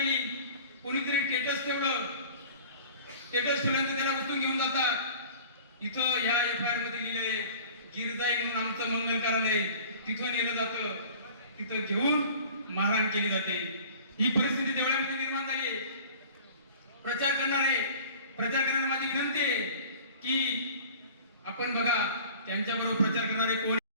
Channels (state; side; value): inverted; both; correlation -0.44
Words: कोणीतरी स्टेटस ठेवल्यानंतर त्याला उचलून घेऊन जातात। इथं ह्या FIR मध्ये लिहिलंय गिरजाई म्हणून आमचं मंगल कार्यालय, तिथं नेलं जातं, तिथं घेऊन मारहाण केली जाते। ही परिस्थिती देवळामध्ये निर्माण झाली आहे। प्रचार करणारे माझी विनंती आहे की आपण बघा त्यांच्याबरोबर प्रचार करणारे कोण?